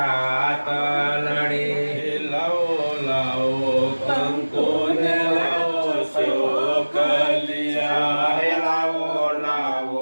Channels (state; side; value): inverted; both; correlation -1.00